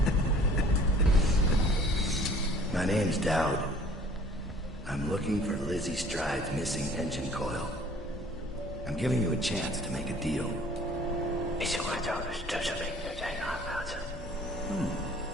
My name's Dowd. I'm looking for Lizzie Stride's missing engine coil. I'm giving you a chance to make a deal.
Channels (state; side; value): normal; both; correlation 0.52